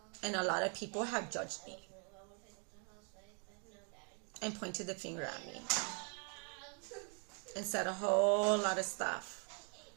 And a lot of people have judged me and pointed the finger at me and said a whole lot of stuff.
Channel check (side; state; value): left; quieter; 36.8 dB